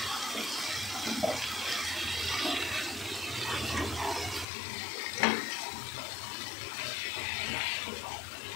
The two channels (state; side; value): drops out; right; at 4.5 s